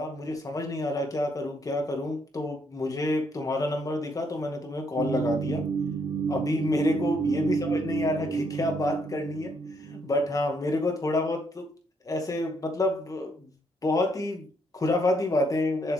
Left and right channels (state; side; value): normal; both; correlation 0.72